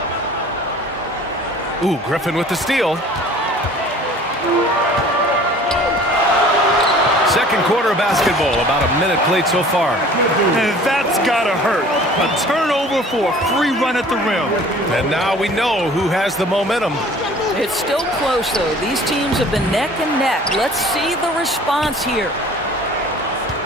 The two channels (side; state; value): both; normal; correlation 0.48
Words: Ooh, Griffin with the steal. Second quarter of basketball, about a minute played so far. And that's gotta hurt. A turnover for a free run at the rim. And now we know who has the momentum. It's still close, though. These teams have been neck and neck. Let's see the response here.